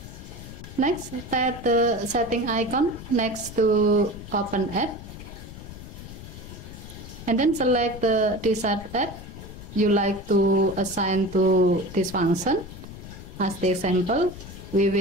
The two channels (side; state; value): left; noise; rumble, 13 dB below the sound